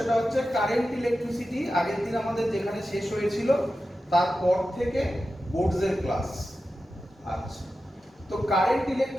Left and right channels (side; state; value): both; normal; correlation 0.92